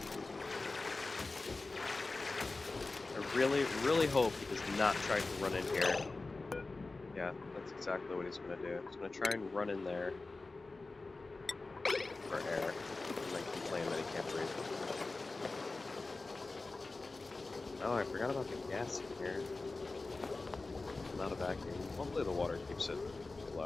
I really hope he does not try to run in here. Yeah, that's exactly what he's going to do. He's going to try and run in there for air, and then complain that he can't breathe. Oh, I forgot about the gas in here. Not a vacuum. Hopefully the water keeps it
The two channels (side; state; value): right; quieter; 3.5 dB